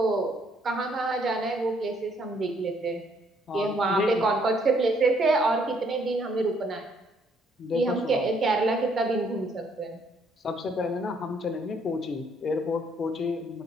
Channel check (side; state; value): both; normal; correlation 0.67